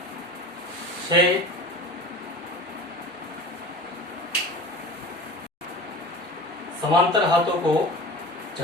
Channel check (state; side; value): normal; both; correlation 0.36